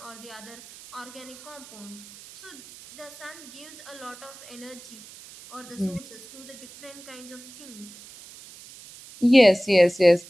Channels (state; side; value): noise; right; hiss, 18 dB below the sound